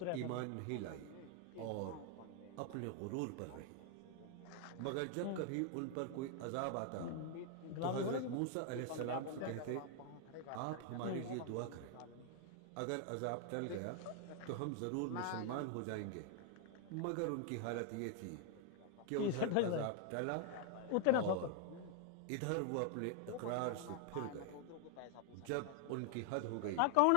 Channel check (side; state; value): both; different; correlation 0.00